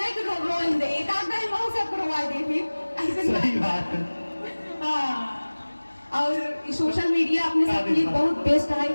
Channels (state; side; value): inverted; both; correlation -1.00